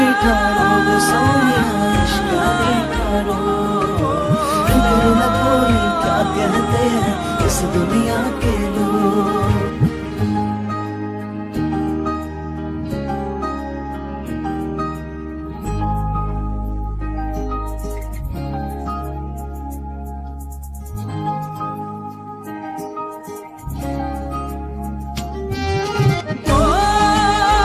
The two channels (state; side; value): identical; both; correlation 1.00